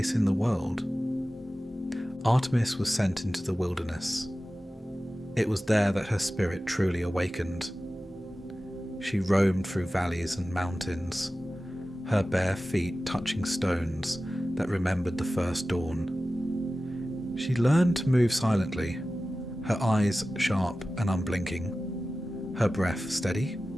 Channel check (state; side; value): normal; both; correlation 0.95